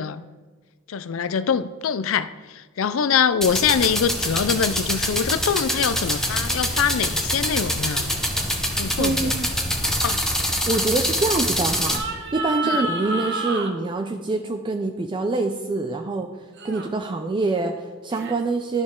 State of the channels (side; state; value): both; normal; correlation 0.31